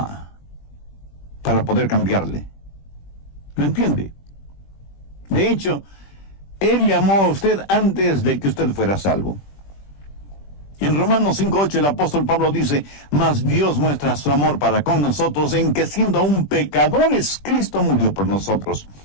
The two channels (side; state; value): right; late; 20 ms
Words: para poder cambiarle. ¿Lo entiende? De hecho, Él le amó a usted antes de que usted fuera salvo. En Romanos 5:8 el apóstol Pablo dice, mas Dios muestra su amor para con nosotros en que siendo aún pecadores, Cristo murió por nosotros.